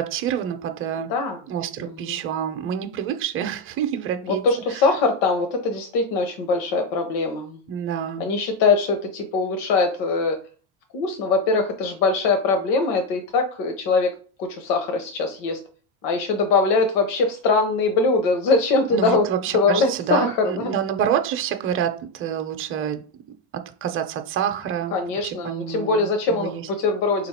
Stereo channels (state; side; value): normal; both; correlation 0.08